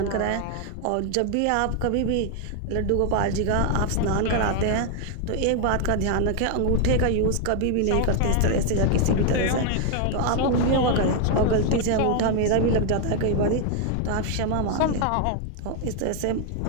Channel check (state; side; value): different; both; correlation 0.00